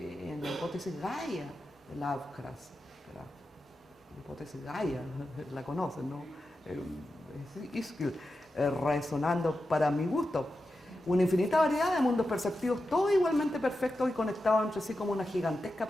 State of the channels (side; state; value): both; normal; correlation 0.90